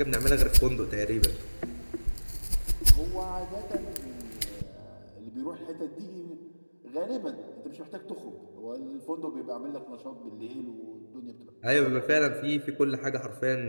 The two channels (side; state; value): both; inverted; correlation -1.00